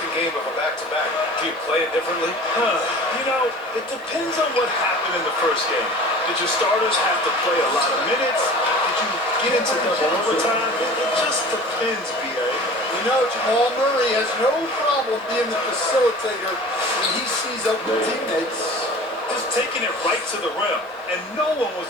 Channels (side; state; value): both; normal; correlation 0.41